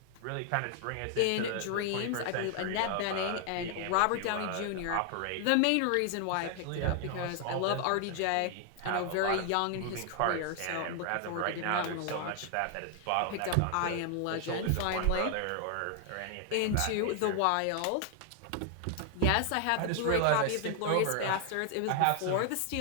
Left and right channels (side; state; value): both; different; correlation 0.00